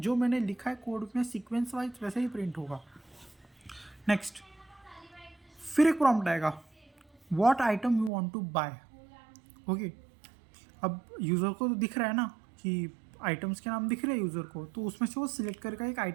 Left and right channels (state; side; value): drops out; left; at 8.1 s